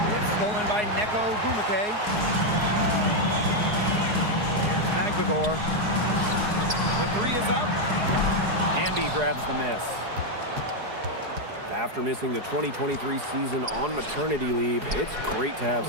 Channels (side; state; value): left; late; 4.8 ms